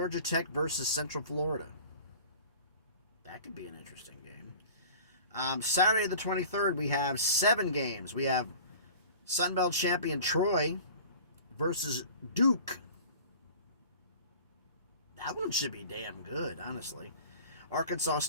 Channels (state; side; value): inverted; both; correlation -0.42